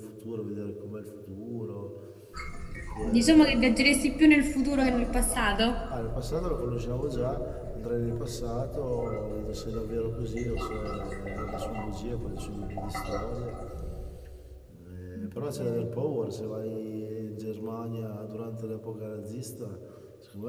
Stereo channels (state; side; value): identical; both; correlation 1.00